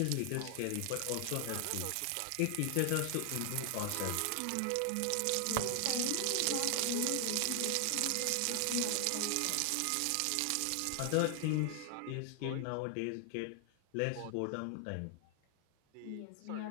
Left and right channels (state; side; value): different; both; correlation 0.00